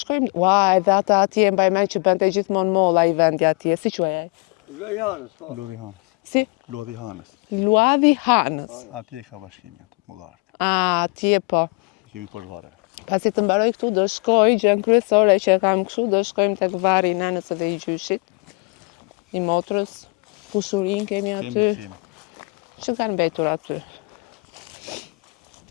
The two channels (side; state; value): right; quieter; 30.7 dB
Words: ua, edhe ata atje mbaj mend që bënte gjithmonë molla i vendi atje, si quajej? Lodhi Hanës. Si? Lodhi Hanës. Luadhi Hanës. Atje ka bashkimi atë, mullark. A, atje po. I kemi poshtë vareve. Pasi të mbaroj këtu, do shkoj, gjën kryesore që e kam kështu, do shkojmë tek vari i nanës edhe i gjyshit, i motrës, kushurin kemi aty. Kemi. Që kanë mbetur aty.